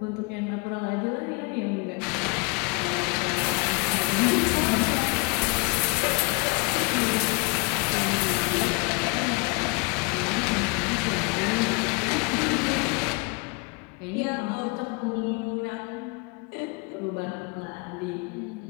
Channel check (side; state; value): right; quieter; 29.6 dB